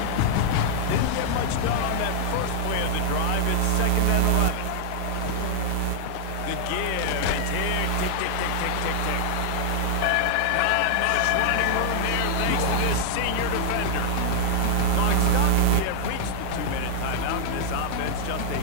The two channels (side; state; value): both; different; correlation 0.00